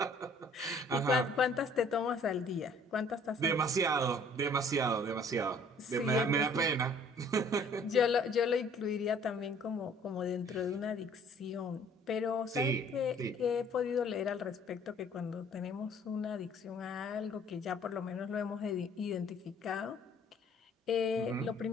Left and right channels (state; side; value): normal; both; correlation 0.56